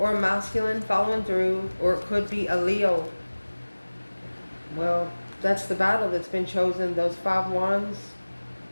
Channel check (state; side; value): inverted; both; correlation -1.00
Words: a masculine following through, or it could be a Leo. Well, that's the battle that's been chosen. Those 5 wands